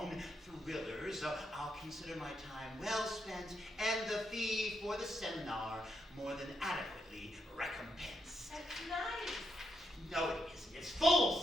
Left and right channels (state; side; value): normal; both; correlation 0.80